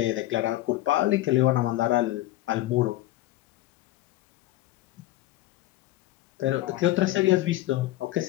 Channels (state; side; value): quieter; right; 16.0 dB